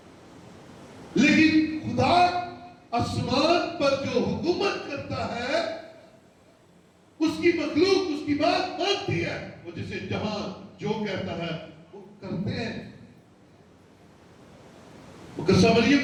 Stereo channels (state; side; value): identical; both; correlation 1.00